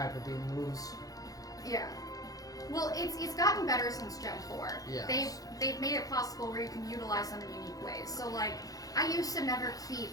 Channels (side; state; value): right; late; 0.17 ms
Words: Beam moves. Yeah. Well, it's gotten better since Gen 4. Yes. They've made it possible where you can utilize them in unique ways. So like, I used to never keep